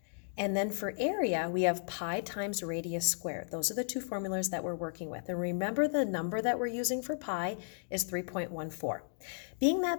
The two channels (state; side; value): silent; right; digital silence